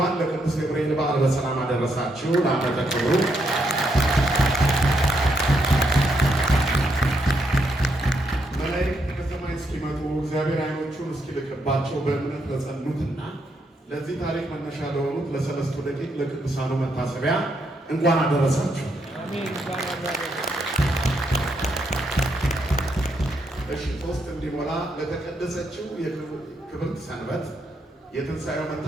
ለቅዱስ ገብርኤል በዓል በሰላም አደረሳችሁ። ለዓመተ ክብሩ መላእክት ከሰማይ እስኪመጡ እግዚአብሔር ዓይኖቹን እስኪልክባቸው በእምነት ለጸኑትና ለዚህ ታሪክ መነሻ ለሆኑት ለሰለስቱ ደቂቅ ለቅዱሳኑ መታሰቢያ እንኳን አደረሳችሁ። እሺ፣ ሶስት እንዲሞላ ለተቀደሰችው የክብርት ሰንበት የትንሣኤው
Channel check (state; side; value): normal; both; correlation 0.78